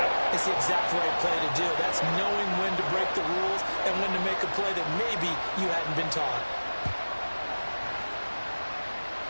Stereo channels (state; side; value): inverted; both; correlation -1.00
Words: it. It's the exact right play to do. That's knowing when to break the rules and when to make a play that maybe you hadn't been taught.